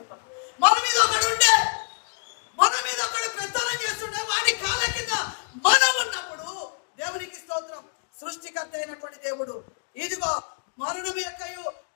మన మీద ఒకడు ఉండే, మన మీద ఒకడు పెత్తనం చేస్తుండే, వాడి కాళ్ళ కింద మనం ఉన్నప్పుడు దేవునికి స్తోత్రం, సృష్టికర్త అయినటువంటి దేవుడు ఇదిగో మరణం యొక్కయు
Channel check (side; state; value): right; silent; digital silence